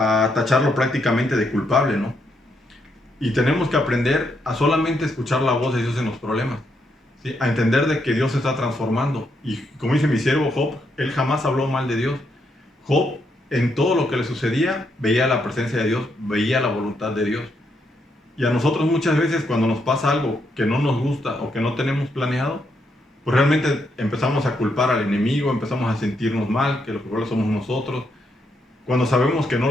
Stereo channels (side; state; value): both; normal; correlation 0.78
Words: tacharlo prácticamente de culpable, ¿no? Y tenemos que aprender a solamente escuchar la voz de Dios en los problemas, ¿sí? A entender de que Dios se está transformando. Y como dice mi siervo Job, él jamás habló mal de Dios. Job, en todo lo que le sucedía, veía la presencia de Dios, veía la voluntad de Dios. Y a nosotros muchas veces cuando nos pasa algo que no nos gusta o que no tenemos planeado, pues realmente empezamos a culpar al enemigo, empezamos a sentirnos mal, que los culpables somos nosotros, cuando sabemos que no